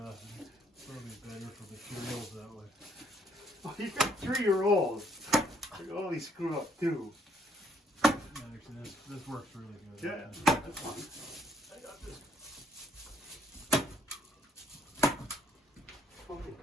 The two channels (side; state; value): both; normal; correlation 0.69